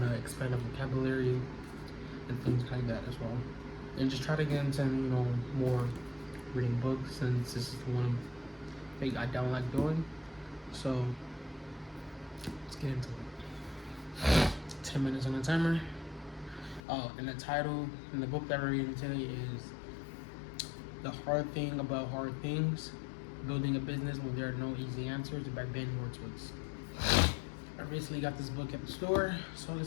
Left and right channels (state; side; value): drops out; right; at 16.8 s